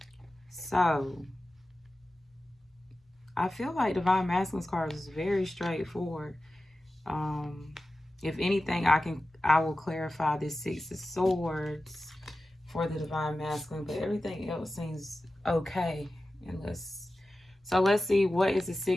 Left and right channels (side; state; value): both; normal; correlation 0.94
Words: So, I feel like Divine Masculine's card is very straightforward. If anything, I will clarify this Six of Swords for the Divine Masculine, but everything else seems okay. So let's see, what is the